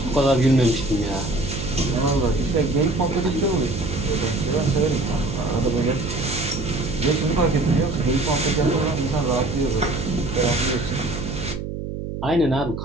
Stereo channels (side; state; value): right; noise; hum, 6 dB below the sound